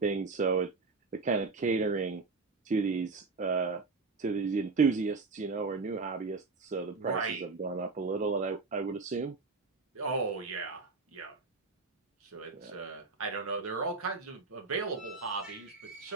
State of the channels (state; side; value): quieter; left; 4.1 dB